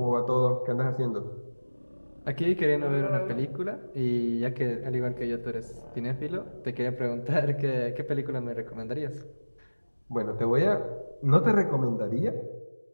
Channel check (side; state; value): both; inverted; correlation -1.00